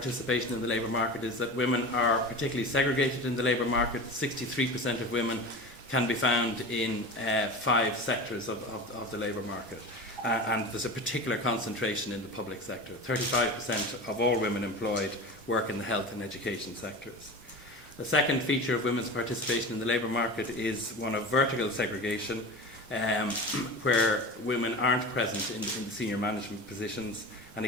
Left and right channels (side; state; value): both; normal; correlation 0.31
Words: in the labour market is that women are particularly segregated in the labour market. 63% of women can be found in 5 sectors of the labour market. And there's a particular concentration in the public sector. 35% of all women employed work in the health and education sectors. The second feature of women's participation in the labour market is one of vertical segregation, where women aren't present in the senior management positions. And